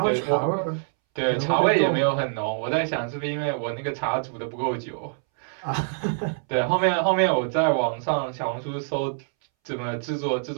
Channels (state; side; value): silent; left; 62 dB below the other